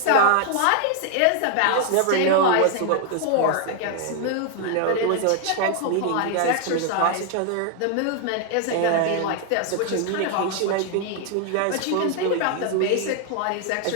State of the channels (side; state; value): both; different; correlation 0.00